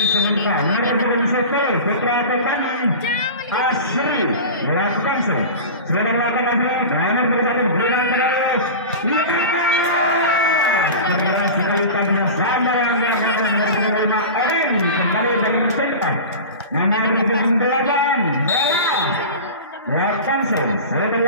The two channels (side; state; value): both; inverted; correlation -0.31